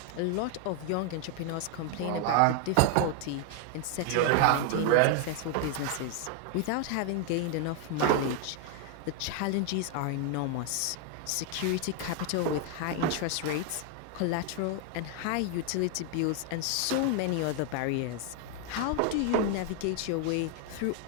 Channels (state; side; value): different; both; correlation 0.00